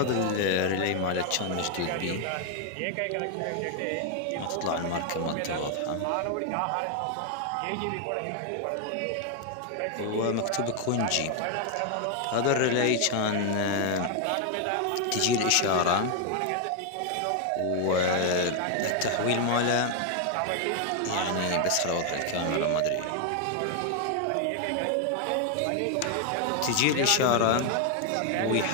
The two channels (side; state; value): both; different; correlation 0.00